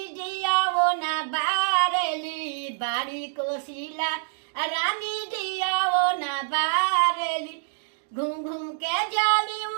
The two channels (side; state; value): left; silent; digital silence